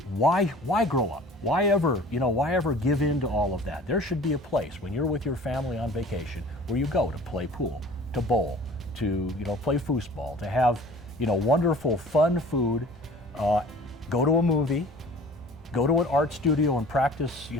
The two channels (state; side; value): normal; both; correlation 0.46